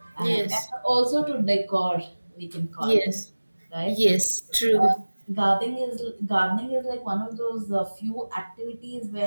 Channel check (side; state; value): both; inverted; correlation -1.00